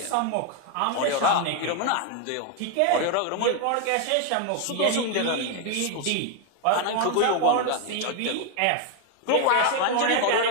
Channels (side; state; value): both; different; correlation 0.01